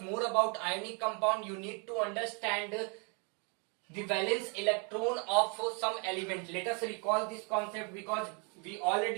more about ionic compound, you need to understand the valence electron of some element. Let us recall this concept because we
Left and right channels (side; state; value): left; quieter; 35.5 dB